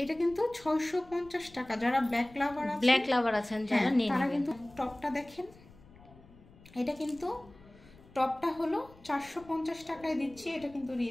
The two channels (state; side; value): noise; left; rumble, 23 dB below the sound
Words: এটা কিন্তু 650 টাকা। যারা ব্ল্যাক লাভার আছেন যারা তারা কিন্তু টপটা দেখেন, এটা কিন্তু টপটা হলো 450 টাকায় দিচ্ছি, এটা কিন্তু